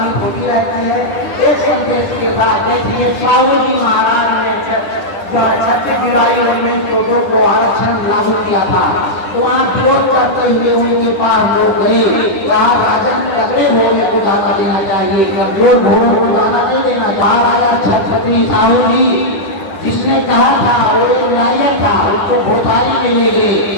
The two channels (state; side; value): late; right; 9.9 ms